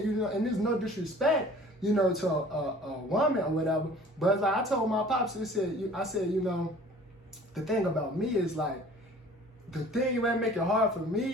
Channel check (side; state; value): both; normal; correlation 0.49